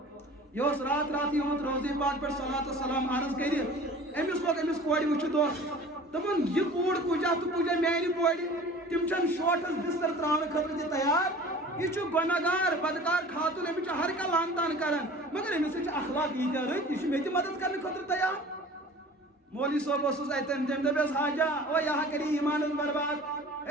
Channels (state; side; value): normal; both; correlation 0.43